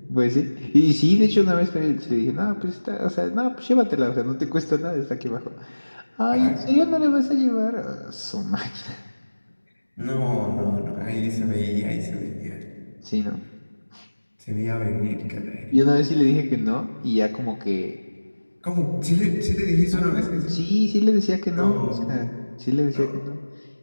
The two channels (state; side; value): inverted; both; correlation -1.00